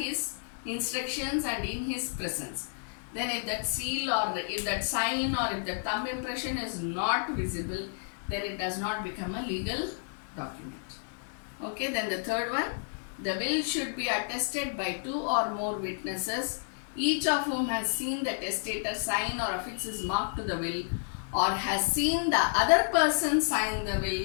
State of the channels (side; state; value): right; silent; digital silence